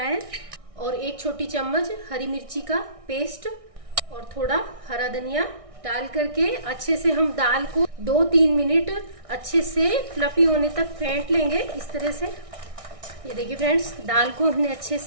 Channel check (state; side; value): late; left; 1.6 ms